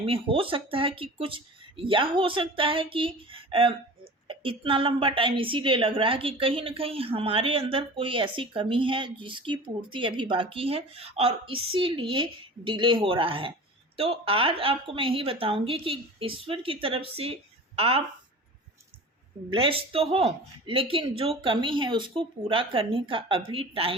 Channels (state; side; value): normal; both; correlation 0.37